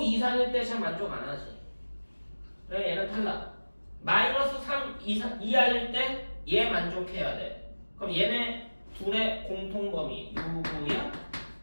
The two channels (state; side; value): inverted; both; correlation -1.00